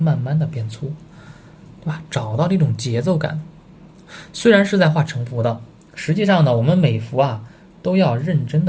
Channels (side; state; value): both; identical; correlation 1.00